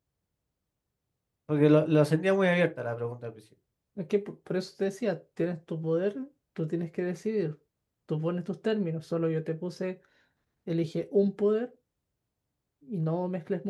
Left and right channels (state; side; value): identical; both; correlation 1.00